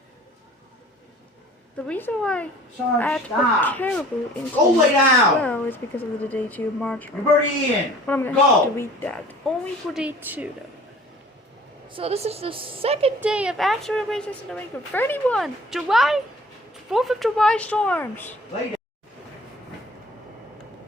the reason why Sarge, I had to stop. put Caribou in Go lay down. well is because of the day two marginal. You're already in. But I'm gonna Go. have to delete that. Only for day two though. So this is the second day of actual erasers in New England. 31 July, 4th of July storms. Lay down.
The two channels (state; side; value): normal; both; correlation 0.49